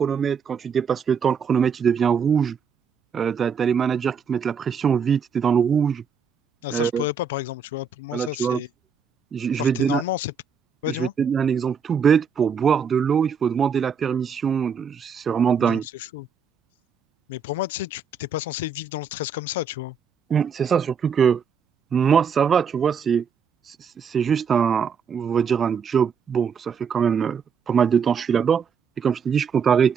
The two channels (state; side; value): quieter; left; 6.1 dB